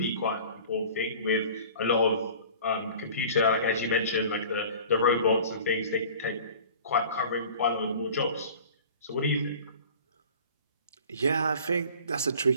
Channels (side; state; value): both; inverted; correlation -0.44